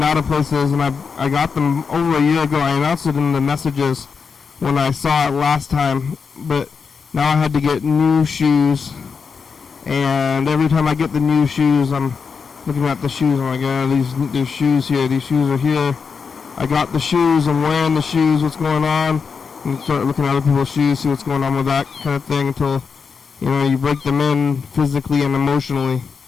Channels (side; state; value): right; quieter; 5.6 dB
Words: out of places, and I got them over a year ago. I announced it in the messages when I saw it last time, but now I had to get new shoes. And every time I get the new shoes, I'm looking at the shoes. I'm like, these shoes here. These shoes are here. I got the shoes. I'm wearing the shoes. What's going on? And start looking at other people's shoes, see what's going on with that kind of thing until, you know, you break them in physically and emotionally